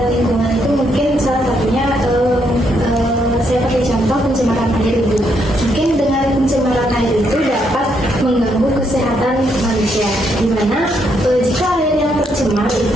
lingkungan itu mungkin salah satunya saya pakai contoh pencemaran air Ibu. Mungkin dengan pencemaran air itu dapat mengganggu kesehatan manusia, di mana jika air yang tercemar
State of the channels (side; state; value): both; normal; correlation 0.75